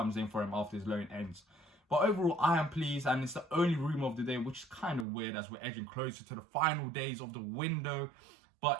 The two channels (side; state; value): left; drops out; at 5.1 s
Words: in for him after his loan ends. But overall, I am pleased, and it's the only rumour of the day, which is kind of weird as we're edging closer to the final days of the window.